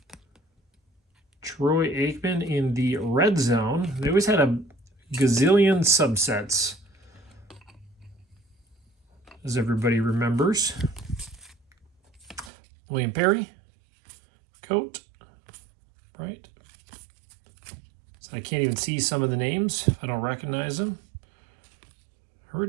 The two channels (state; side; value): drops out; left; at 12.5 s